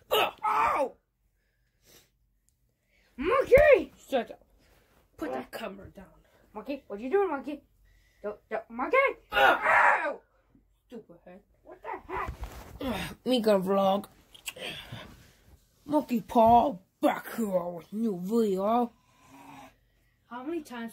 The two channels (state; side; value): identical; both; correlation 1.00